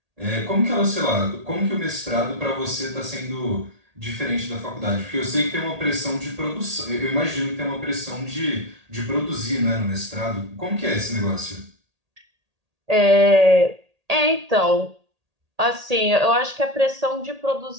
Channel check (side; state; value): left; late; 1.8 ms